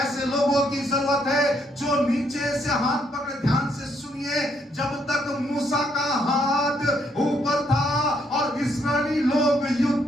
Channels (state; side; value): normal; both; correlation 0.72